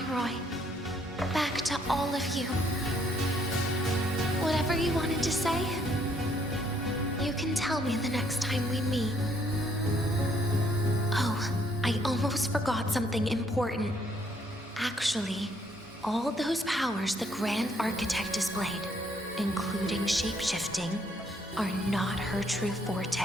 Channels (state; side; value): normal; both; correlation 0.68